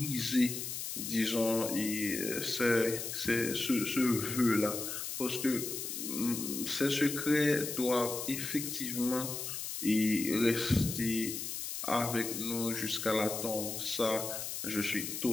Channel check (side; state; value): left; noise; hiss, 5 dB below the sound